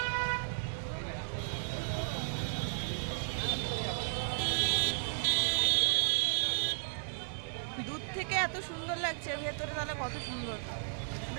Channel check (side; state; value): left; silent; 55 dB below the other